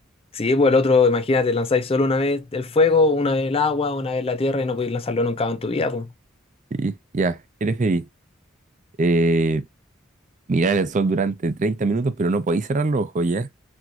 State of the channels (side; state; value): both; normal; correlation 0.47